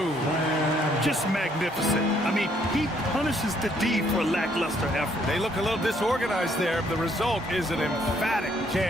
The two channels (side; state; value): both; normal; correlation 0.68